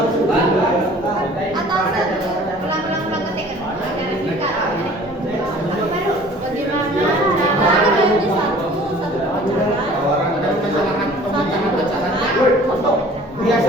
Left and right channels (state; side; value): normal; both; correlation 0.49